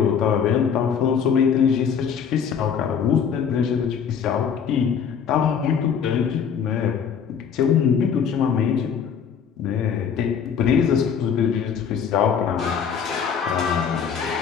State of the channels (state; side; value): quieter; right; 7.3 dB